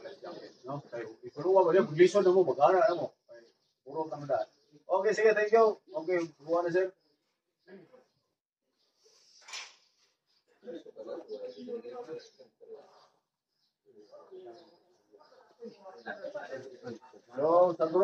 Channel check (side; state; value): both; identical; correlation 1.00